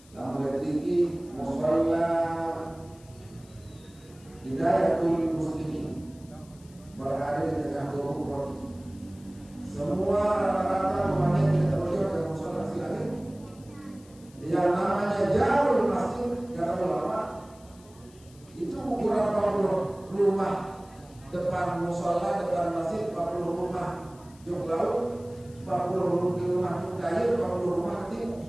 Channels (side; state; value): left; noise; hiss, 26 dB below the sound